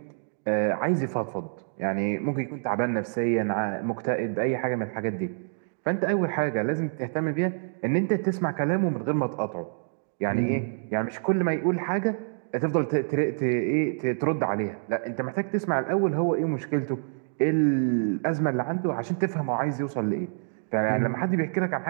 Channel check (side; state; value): left; silent; digital silence